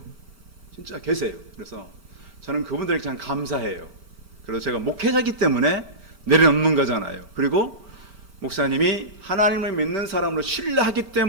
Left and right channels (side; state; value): left; late; 5.1 ms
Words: 진짜 계세요. 그래서 저는 그분들에게 참 감사해요. 그래서 제가 목회자이기 때문에 내려놓는 거잖아요. 그리고 목사님이 하나님을 믿는 사람으로 신뢰하기